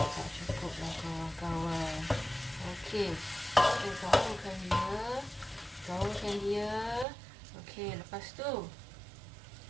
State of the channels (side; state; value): left; drops out; at 7.1 s